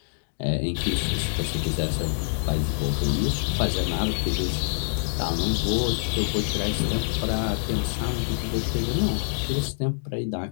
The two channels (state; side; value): silent; right; digital silence